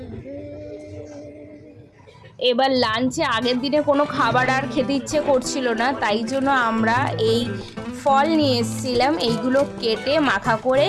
रे। এবার লাঞ্চে আগের দিনে কোনো খাবার আর খেতে ইচ্ছে করছিল না, তাই জন্য আমরা এই ফল নিয়ে এসেছিলাম, এইগুলো কেটে মাখা করে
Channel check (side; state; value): both; identical; correlation 1.00